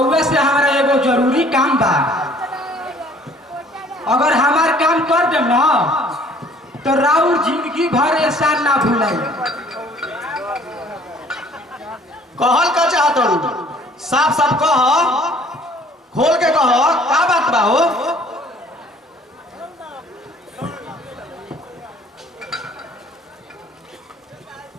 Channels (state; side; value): normal; both; correlation 0.55